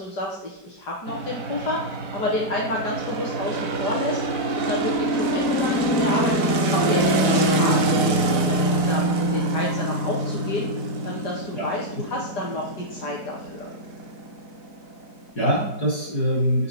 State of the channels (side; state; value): right; late; 4.1 ms